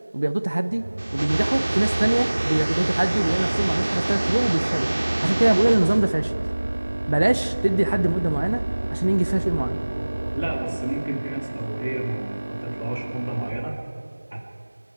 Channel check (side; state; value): both; inverted; correlation -1.00